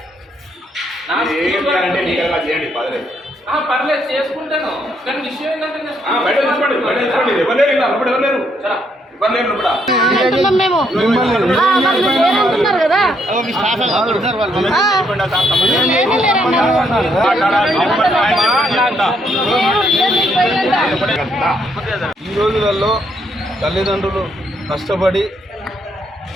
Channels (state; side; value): normal; both; correlation 0.73